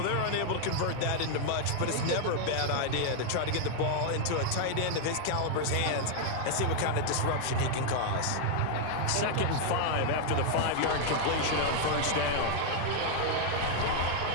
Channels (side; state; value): both; different; correlation 0.00